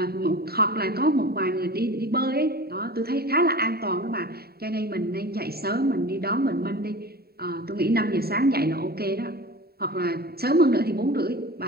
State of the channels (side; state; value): left; late; 0.45 ms